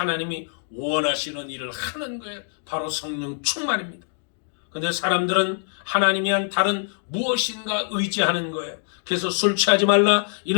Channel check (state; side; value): silent; right; digital silence